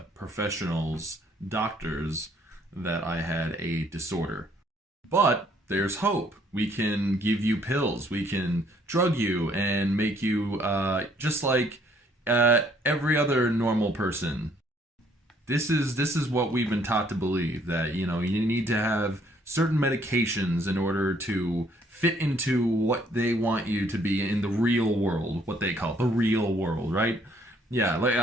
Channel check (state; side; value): normal; both; correlation 0.64